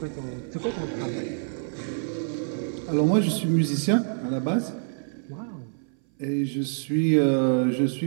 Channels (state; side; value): silent; left; 57 dB below the other